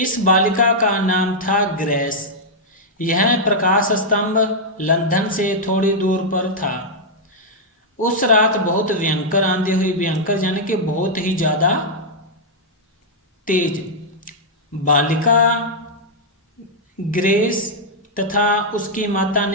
बालिका का नाम था ग्रेस। यह प्रकाश स्तंभ लंदन से थोड़ी दूर पर था। उस रात बहुत भयंकर आंधी हुई। भयंकर यानी कि बहुत ही ज्यादा तेज। बालिका ग्रेस तथा उसकी माता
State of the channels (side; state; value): both; normal; correlation -0.05